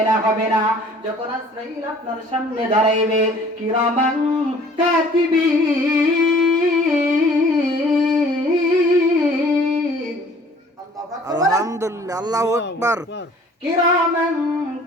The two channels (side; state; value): both; normal; correlation 0.53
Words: না, হবে না। যখন আজরাইল আপনার সামনে দাঁড়াইবে, কিরামান কাতিবিন, আলহামদুলিল্লাহ, আল্লাহু আকবার। কিরামান